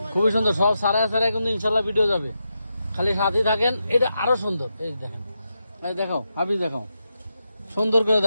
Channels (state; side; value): inverted; both; correlation -0.86